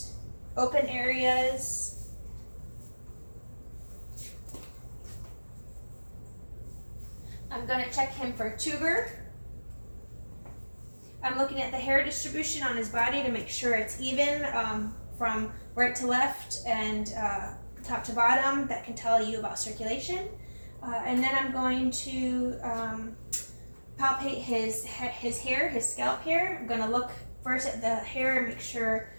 open areas. I'm going to check him for tuber. I'm looking at the hair distribution on his body to make sure it's even from right to left and top to bottom. That can tell you about circulation. And then I'm going to palpate his hair, his scalp hair. I'm going to look first at the hair and make sure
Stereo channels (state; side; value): inverted; both; correlation -1.00